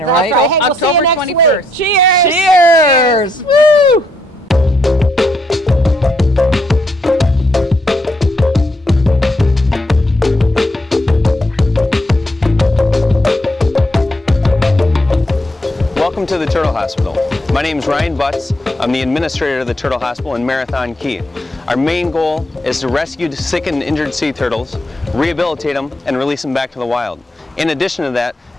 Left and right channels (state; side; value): normal; both; correlation 0.76